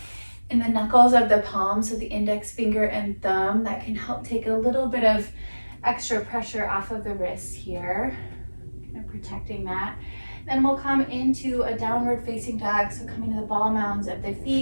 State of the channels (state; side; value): inverted; both; correlation -1.00